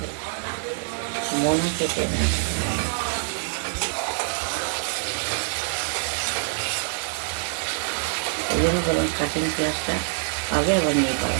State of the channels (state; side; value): silent; left; digital silence